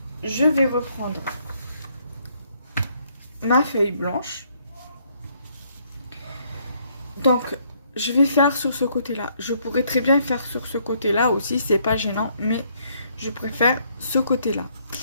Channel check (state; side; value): inverted; both; correlation -0.69